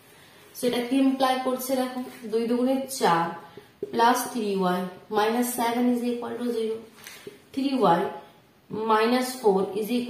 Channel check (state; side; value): identical; both; correlation 1.00